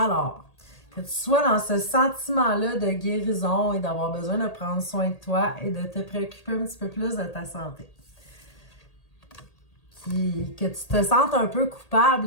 que tu sois dans ce sentiment-là de guérison et d'avoir besoin de prendre soin de toi et de te préoccuper un petit peu plus de ta santé. Que tu te sentes un peu coupable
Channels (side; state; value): right; late; 1.8 ms